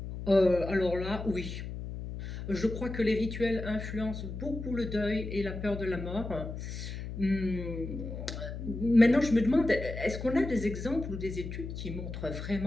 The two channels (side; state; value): left; noise; hum, 7 dB below the sound